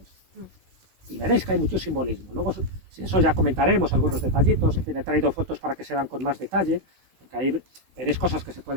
Y veréis que hay mucho simbolismo. Luego, si eso ya comentaremos algunos detallitos. En fin, he traído fotos para que se vean con más detalle, porque ahí veréis cosas que se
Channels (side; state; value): left; late; 16 ms